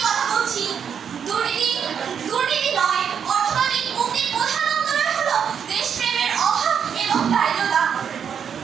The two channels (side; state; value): left; quieter; 7.6 dB